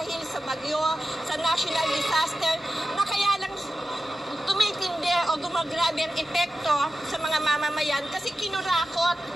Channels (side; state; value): both; normal; correlation 0.93